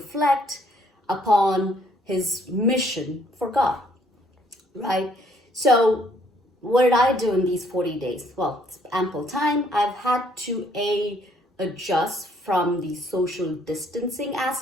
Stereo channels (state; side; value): normal; both; correlation 0.65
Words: upon his mission for God, right? So what did I do in these 40 days? Well, it's ample time. I've had to adjust from the social distancing